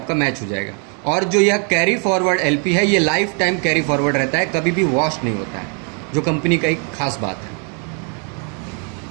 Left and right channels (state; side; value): quieter; left; 39.4 dB